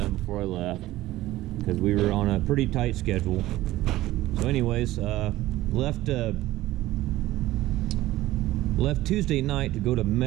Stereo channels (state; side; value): quieter; left; 16.3 dB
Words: before I left because we were on a pretty tight schedule. So anyways, left Tuesday night to go to